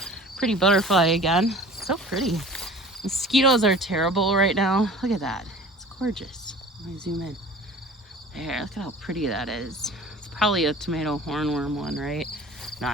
pretty butterfly again. It's so pretty. Mosquitoes are terrible right now. Look at that. It's gorgeous. Let me zoom in. There, look at how pretty that is. It's probably a tomato hornworm one, right? No,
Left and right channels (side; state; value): both; normal; correlation 0.42